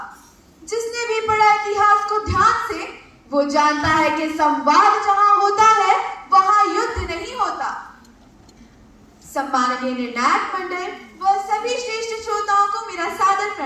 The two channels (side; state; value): both; identical; correlation 1.00